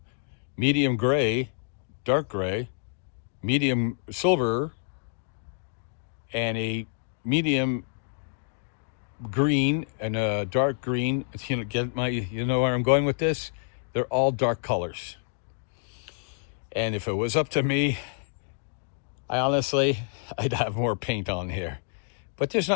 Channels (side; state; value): right; silent; digital silence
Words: medium gray, dark gray, medium silver, and a medium green and a dark green, you know where I'm going with this? They're all dark colors. And if it was up to me, I'd have more paint on here. But there's